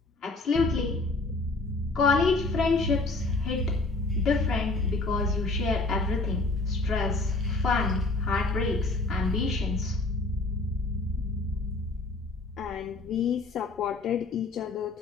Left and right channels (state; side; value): quieter; right; 3.3 dB